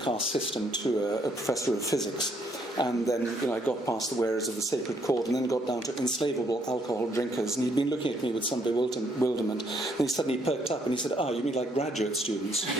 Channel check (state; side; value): normal; both; correlation 0.70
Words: system to a professor of physics. And then I got past the wearers of the sacred cord and then got down to enslavable alcohol drinkers. And he'd been looking at me with some bewilderment. And he suddenly perked up and he said, you mean like graduate students?